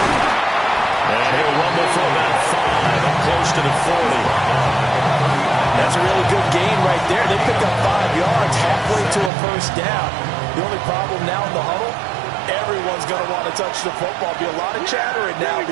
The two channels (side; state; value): left; drops out; at 9.3 s